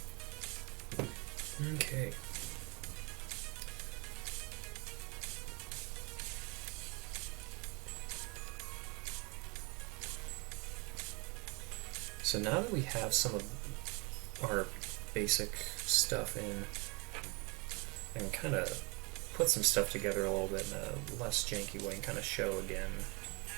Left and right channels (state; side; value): quieter; left; 29.8 dB